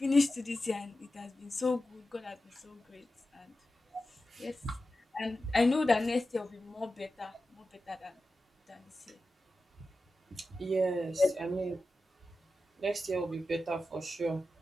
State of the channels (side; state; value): both; normal; correlation 0.93